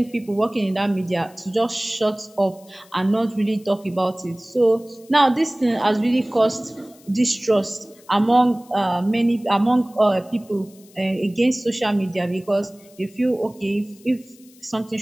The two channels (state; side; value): noise; left; hiss, 26 dB below the sound